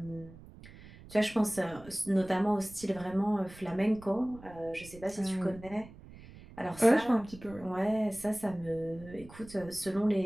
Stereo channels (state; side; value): noise; right; rumble, 19 dB below the sound